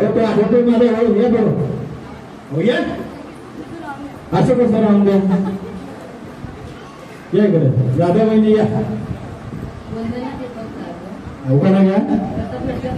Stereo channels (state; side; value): identical; both; correlation 1.00